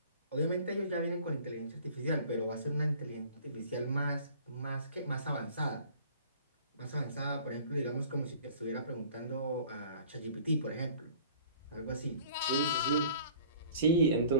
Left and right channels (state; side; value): inverted; both; correlation -0.49